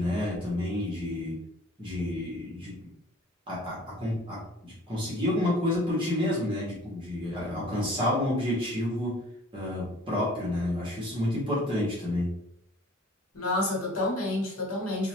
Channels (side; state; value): both; normal; correlation 0.50